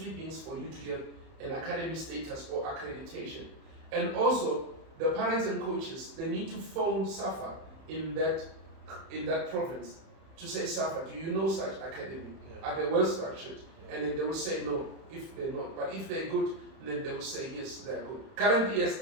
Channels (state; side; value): late; left; 31 ms